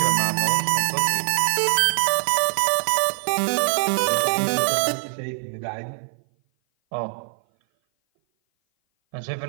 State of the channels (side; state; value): left; silent; 57 dB below the other